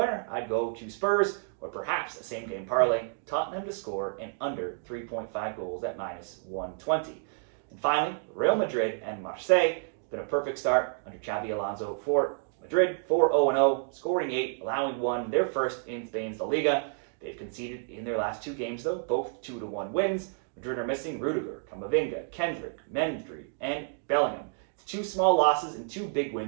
I'd go to Spurs, or perhaps a same-game parlay, Tottenham to score and under 3.5 goals at -120. And finally, Real Madrid and Marseille. It's been a perfect start under Xabi Alonso for Madrid, 4-0-0, scoring 8, allowing 1. They're first in Spain's La Liga. They've conceded in their last 2 games, though, both 2-1 wins. Madrid are missing Rudiger, Camavinga, Kendrick, Mendry, and Bellingham. It's 2 small losses and 2 big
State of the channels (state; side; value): silent; left; digital silence